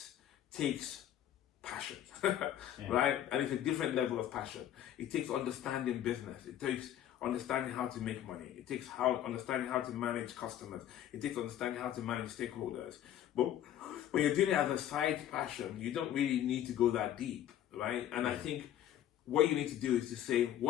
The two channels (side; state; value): right; quieter; 11.4 dB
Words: takes passion, right? And it's a different level of passion. It takes understanding business. It takes understanding how to make money. It takes understanding how to manage customers. It takes understanding how to manage stakeholders. But when you're doing it as a side passion, you don't really need to go that deep, right? And I think what you need to do is to say,